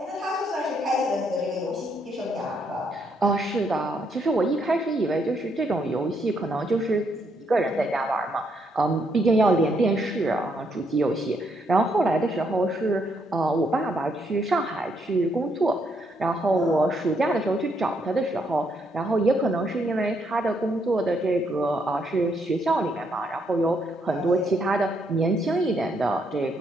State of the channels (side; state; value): both; normal; correlation 0.75